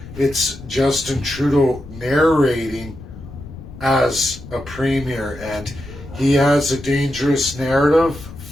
It's Justin Trudeau narrating as a premier, and he has a dangerous narrative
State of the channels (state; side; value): noise; left; rumble, 15 dB below the sound